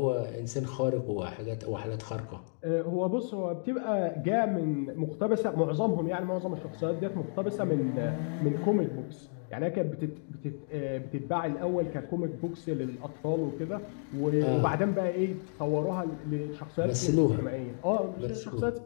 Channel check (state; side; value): silent; right; digital silence